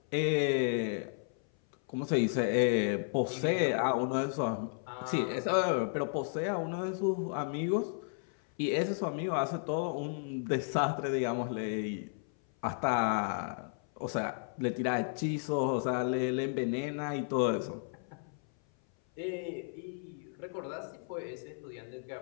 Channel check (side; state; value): right; silent; 55 dB below the other